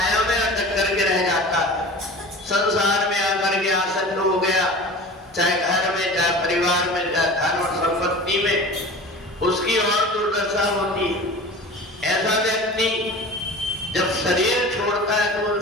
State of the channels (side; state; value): both; normal; correlation 0.37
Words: में अटक करके रह जाता है, संसार में आकर के आसक्त हो गया, चाहे घर में, चाहे परिवार में, चाहे धन और संपत्ति में, उसकी और दुर्दशा होती है। ऐसा व्यक्ति जब शरीर छोड़ता है तो उन